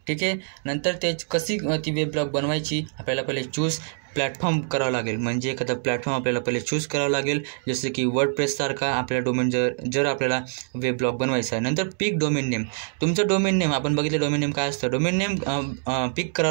ठीक आहे, नंतर कशी ती वेब ब्लॉग बनवायची, आपल्याला पहिले चूज प्लॅटफॉर्म करावं लागेल, म्हणजे एखादा प्लॅटफॉर्म आपल्याला पहिले चूज करावं लागेल, जसं की वर्डप्रेससारखा आपल्या डोमेन जर आपल्याला वेब ब्लॉग बनवायचा आहे. नंतर पिक डोमेन नेम, तुमचं डोमेन नेम आपण बघितलं डोमेन नेम काय असतं, डोमेन नेम पिक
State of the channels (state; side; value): silent; left; digital silence